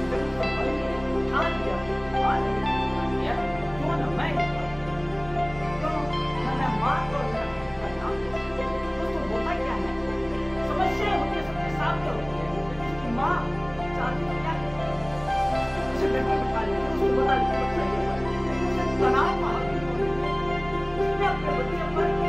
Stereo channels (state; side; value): noise; right; rumble, 21 dB below the sound